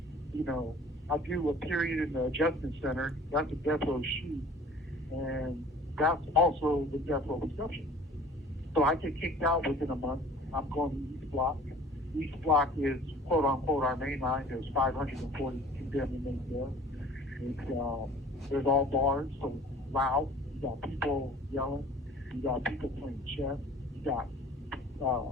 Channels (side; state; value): both; normal; correlation 0.47